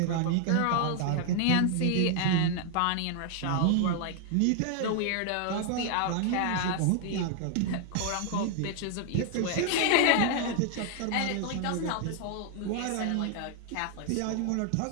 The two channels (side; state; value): both; different; correlation 0.00